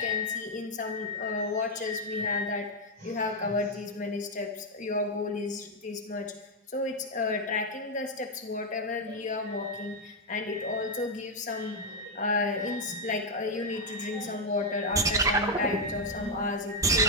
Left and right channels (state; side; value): normal; both; correlation 0.02